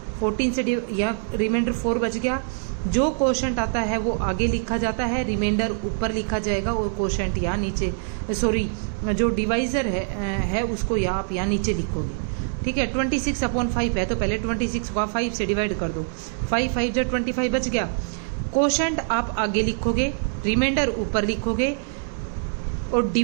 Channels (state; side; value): silent; left; digital silence